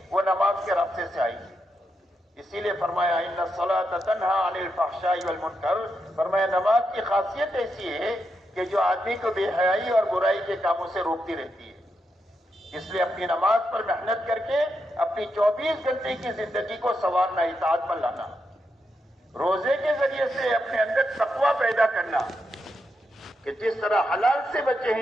وہ نماز کے راستے سے آئے گی. اسی لیے فرمایا ان الصلاۃ تنہا عن الفحشاء والمنکر. فرمایا نماز کی خاصیت ایسی ہے کہ جو آدمی کو بے حیائی اور برائی کے کاموں سے روکتی رہتی ہے. اس لیے اپنی نماز پر محنت کر کے اپنی 24 گھنٹے کی زندگی کو سنوارنا, اطاعت پر لانا. روزے کے ذریعے سے اپنے اندر تقویٰ پیدا کرنا کہ جس طرح حلال سے بچے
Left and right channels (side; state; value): both; normal; correlation 0.84